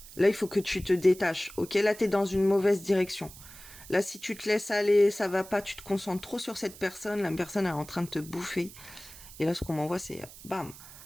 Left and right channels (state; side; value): noise; right; hiss, 17 dB below the sound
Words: Là, il faut que tu te détaches. Ok, là, t'es dans une mauvaise direction. Là, si tu te laisses aller, ça va pas, tu te concentres trop sur cette personne, la personne elle est en train de te bouffer. Et là, ce qu'on m'envoie, c'est bam,